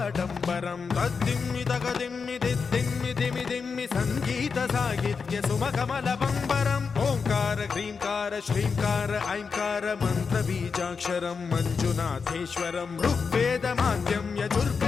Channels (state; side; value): quieter; right; 5.4 dB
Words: तद्दिम्मि तगदिम्मि दिद्दिम्मि दिमि दिम्मि सङ्गीत साहित्य सुमकमलबम्बरम् ओङ्कार ह्रीङ्कार श्रीङ्कार ऐङ्कार मन्त्रबीजाक्षरं मञ्जुनाथेश्वरं ऋग्वेदमाद्यं